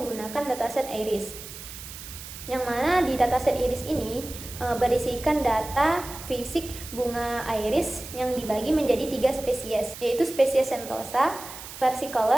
dataset iris. Yang mana di dataset iris ini berisikan data fisik bunga iris yang dibagi menjadi 3 spesies, yaitu spesies Sentosa,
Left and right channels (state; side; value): noise; right; hiss, 12 dB below the sound